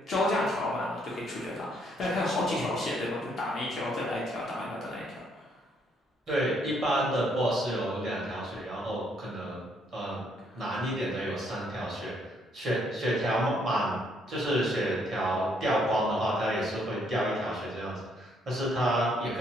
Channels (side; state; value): both; normal; correlation 0.70